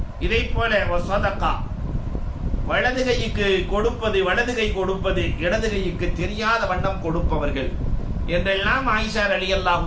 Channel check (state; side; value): identical; both; correlation 1.00